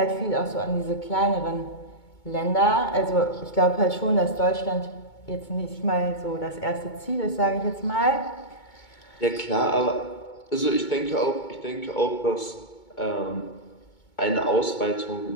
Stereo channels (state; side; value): late; right; 2.2 ms